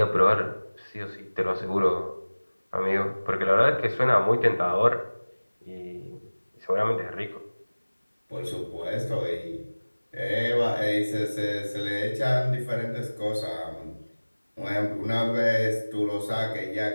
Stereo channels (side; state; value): both; inverted; correlation -1.00